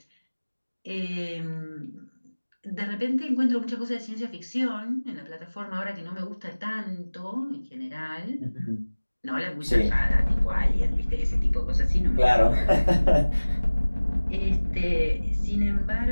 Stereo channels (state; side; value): inverted; both; correlation -1.00